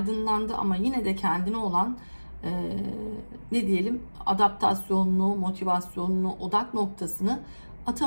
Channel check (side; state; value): both; inverted; correlation -1.00